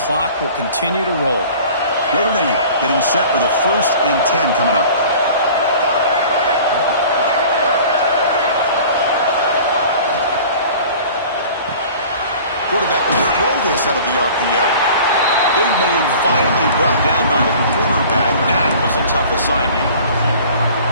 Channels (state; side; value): inverted; both; correlation -0.45